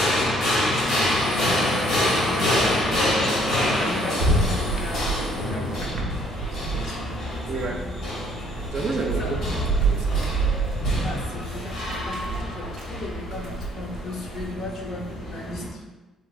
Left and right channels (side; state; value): both; normal; correlation 0.62